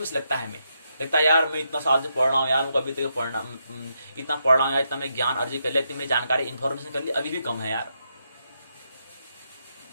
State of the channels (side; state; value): both; inverted; correlation -0.81